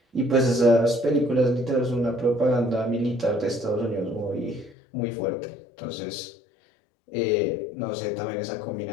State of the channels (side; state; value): right; drops out; at 4.8 s